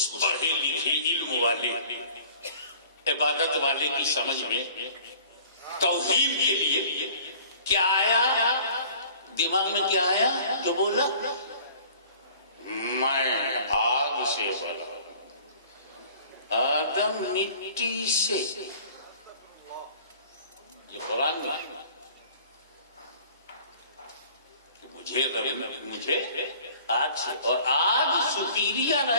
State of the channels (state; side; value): inverted; both; correlation -0.49